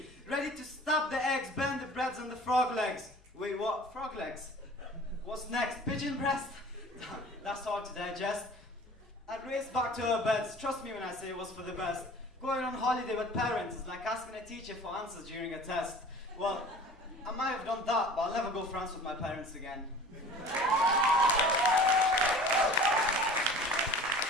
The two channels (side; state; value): left; noise; hum, 29 dB below the sound